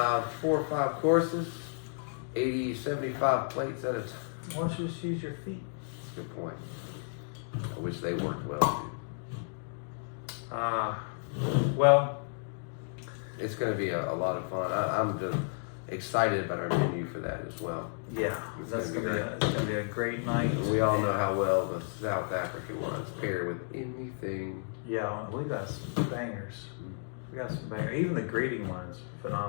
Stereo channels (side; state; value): right; silent; digital silence